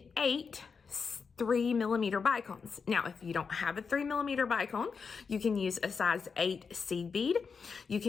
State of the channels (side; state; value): right; quieter; 5.5 dB